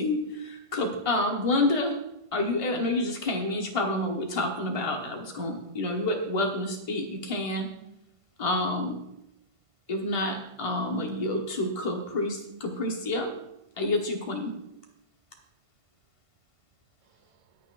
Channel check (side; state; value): left; late; 1.5 ms